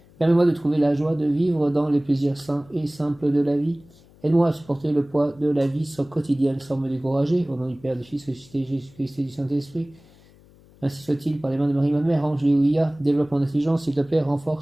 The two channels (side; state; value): left; noise; hum, 27 dB below the sound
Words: Permets-moi de trouver la joie de vivre dans les plaisirs sains et simples de la vie. Aide-moi à supporter le poids de la vie quotidienne sans me décourager. Au nom du Père, du Fils ressuscité, Jésus-Christ et du Saint-Esprit. Ainsi soit-il, par les mains de Marie, ma mère. Angélé-Ouvia, développe mon intelligence, s'il te plaît,